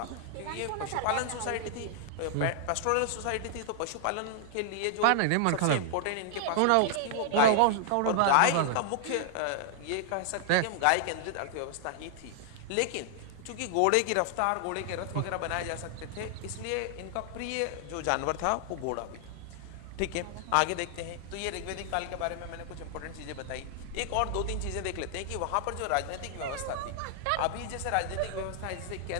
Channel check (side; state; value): both; different; correlation 0.00